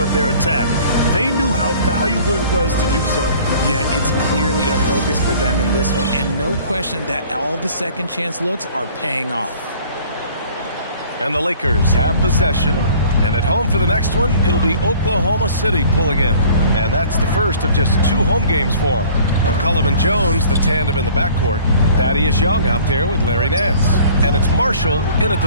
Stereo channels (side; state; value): both; inverted; correlation -0.51